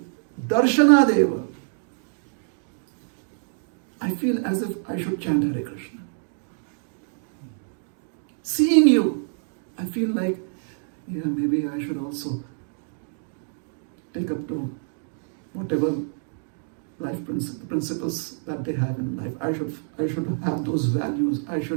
darshana deva. I feel as if I should chant Hare Krishna. Seeing you, I feel like, maybe I should also take up to whatever life principles that they have in life. I should have those values. I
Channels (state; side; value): silent; left; 61 dB below the other